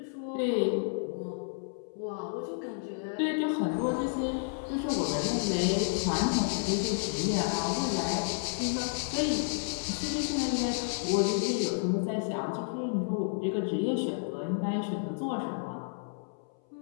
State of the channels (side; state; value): right; silent; 57 dB below the other